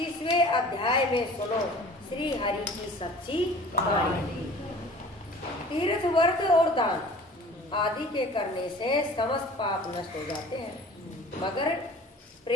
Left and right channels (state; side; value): normal; both; correlation 0.45